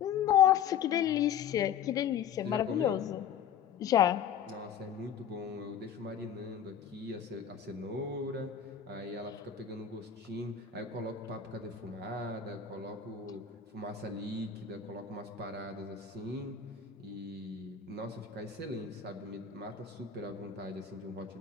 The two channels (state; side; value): quieter; right; 8.1 dB